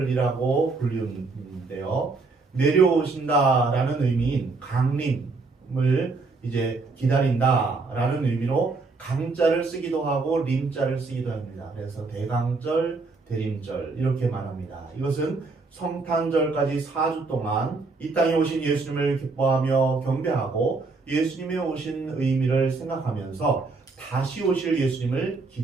불리는데요. 내려오신다라는 의미인 강림을 이제 기다린다라는 의미로 강자를 쓰기도 하고 림자를 쓰기도 합니다. 그래서 대강절, 대림절 이렇게 말합니다. 이것은 성탄절까지 4주 동안 이 땅에 오신 예수님을 기뻐하며 경배하고 예수님의 오신 의미를 생각하면서 다시 오실 예수님을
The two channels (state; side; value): quieter; left; 3.9 dB